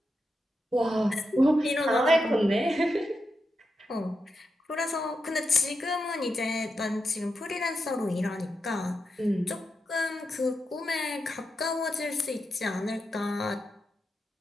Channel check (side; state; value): both; normal; correlation 0.86